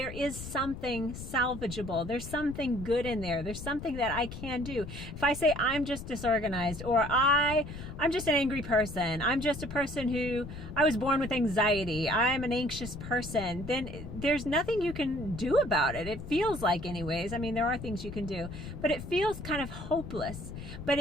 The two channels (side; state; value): left; noise; rumble, 10 dB below the sound